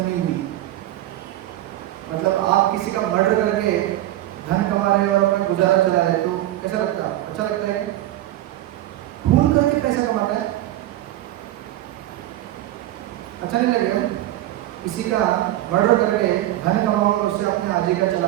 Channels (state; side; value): quieter; left; 14.6 dB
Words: हुई। मतलब आप किसी का मर्डर करके धन कमा रहे हैं और अपना गुजारा चला रहे हैं, तो कैसा लगता है? अच्छा लगता है? खून करके पैसा कमाता है, अच्छा नहीं लगेगा? किसी का मर्डर करके धन कमाओ और उससे अपने आजीविका